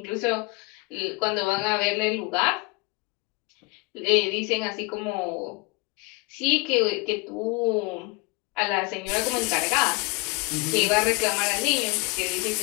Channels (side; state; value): right; quieter; 26.9 dB